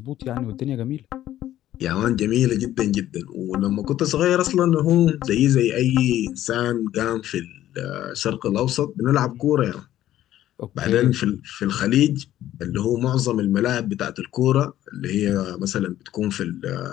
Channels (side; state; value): right; quieter; 13.0 dB